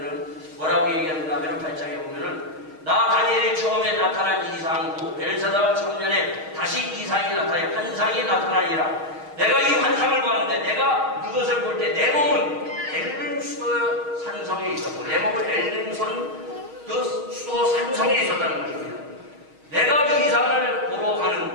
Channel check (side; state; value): left; late; 6.4 ms